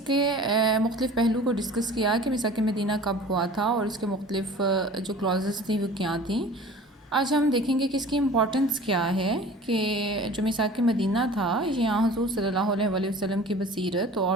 کے مختلف پہلو کو ڈسکس کیا کہ میثاق مدینہ کب ہوا تھا اور اس کے مختلف جو کلازز تھیں وہ کیا تھیں۔ آج ہم دیکھیں گے کہ اس کی امپورٹنس کیا ہے کہ جو میثاق مدینہ تھا یہ حضور صلی اللہ علیہ وسلم کی بصیرت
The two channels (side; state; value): both; normal; correlation 0.43